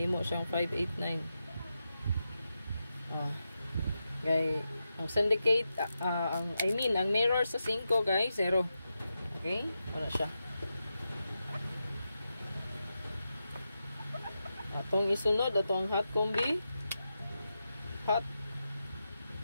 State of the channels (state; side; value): inverted; both; correlation -0.89